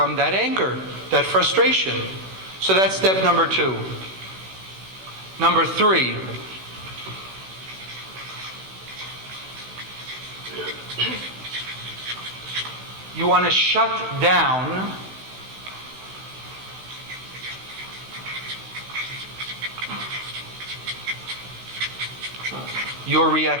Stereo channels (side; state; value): left; late; 16 ms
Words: that anger, that frustration. So that's step number 2. Number 3. You want to shut down your